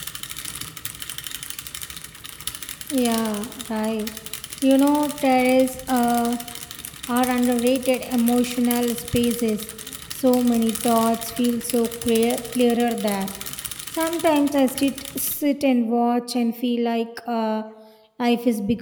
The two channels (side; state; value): both; identical; correlation 1.00